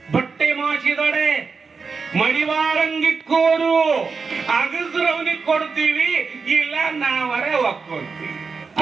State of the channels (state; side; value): quieter; left; 4.9 dB